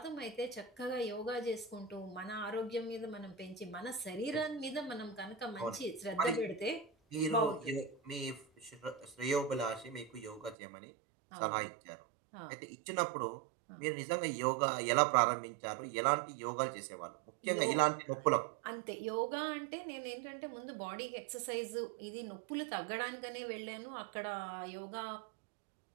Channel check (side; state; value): left; drops out; at 10.6 s